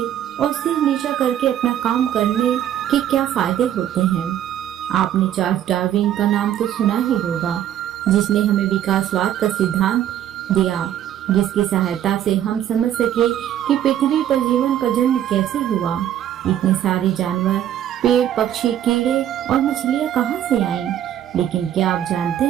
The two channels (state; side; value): quieter; left; 11.0 dB